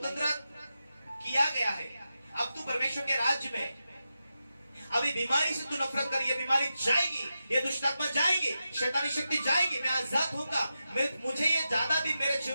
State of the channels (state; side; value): inverted; both; correlation -0.90